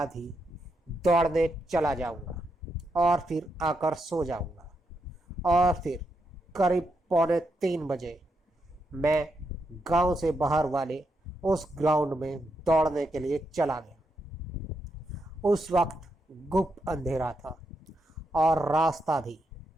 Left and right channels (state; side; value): normal; both; correlation 0.82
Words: ही दौड़ने चला जाऊंगा और फिर आकर सो जाऊंगा। और फिर करीब 2:45 बजे मैं गांव से बाहर वाले उस ग्राउंड में दौड़ने के लिए चला गया। उस वक्त गुप्त अंधेरा था और रास्ता भी